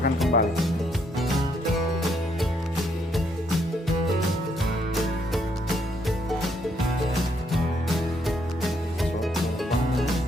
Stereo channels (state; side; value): normal; both; correlation 0.73